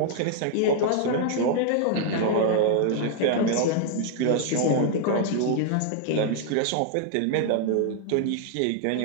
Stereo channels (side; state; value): both; different; correlation 0.00